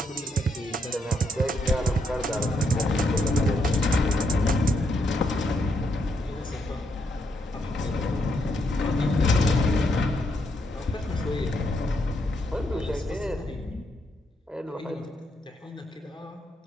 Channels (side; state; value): both; normal; correlation 0.78